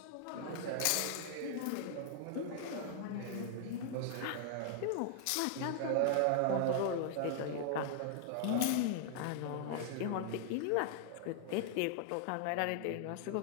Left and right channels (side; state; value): both; different; correlation -0.01